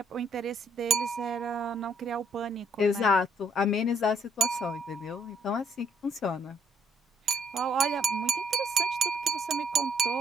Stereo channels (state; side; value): normal; both; correlation 0.66